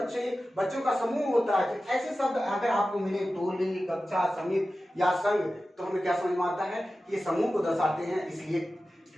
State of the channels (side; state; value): both; normal; correlation 0.94